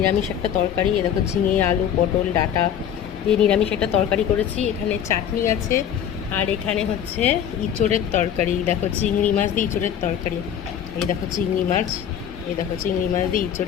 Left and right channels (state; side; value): quieter; right; 9.3 dB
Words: একটা তরকারি। এ দেখো ঝিঙে আলু পটল ডাঁটা দিয়ে নিরামিষ একটা তরকারি করেছি। এখানে চাটনি আছে আর এখানে হচ্ছে ইঁচড়ের তরকারি। দেখো চিংড়ি মাছ দিয়ে ইঁচড়ের তরকারি। এই দেখো চিংড়ি মাছ, এই দেখো চিংড়ি মাছ দিয়ে